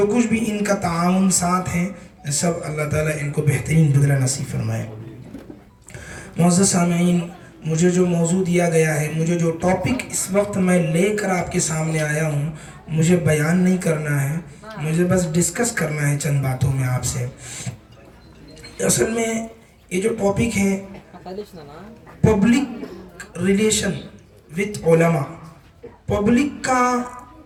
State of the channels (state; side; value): identical; both; correlation 1.00